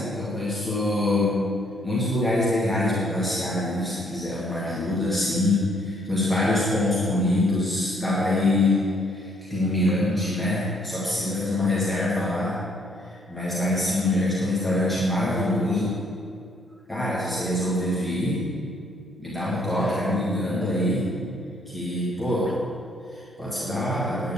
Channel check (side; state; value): both; normal; correlation 0.66